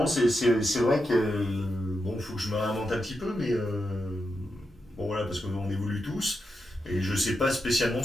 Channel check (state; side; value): normal; both; correlation 0.86